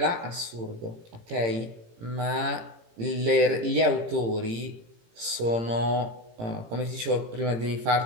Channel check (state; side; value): late; left; 18 ms